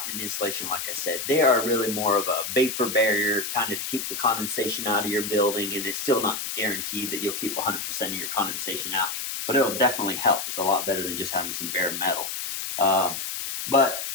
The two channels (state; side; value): noise; left; hiss, 4 dB below the sound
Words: an insulation, like I said. They are really more of a vapor barrier, kind of to keep the condensation out of your building, and it's still not guaranteed that you'll keep 100% of your condensation out, but it'll definitely help. It's a lot better than just having some bare metal. But,